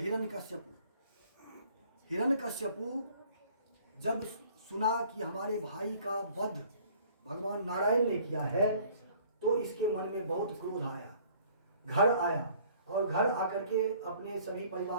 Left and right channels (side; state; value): both; inverted; correlation -0.55